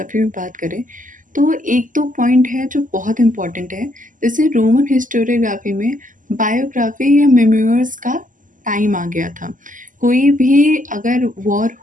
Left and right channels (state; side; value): late; left; 0.38 ms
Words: में बात करें तो एक दो पॉइंट है जो बहुत इम्पोर्टेंट है। जैसे रोमन हिस्टोरियोग्राफी में बायोग्राफी या मेमोइर्स का टाइम आ गया था। कोई भी अगर वॉर